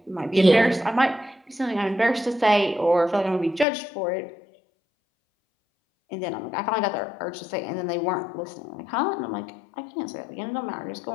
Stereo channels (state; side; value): drops out; right; at 3.7 s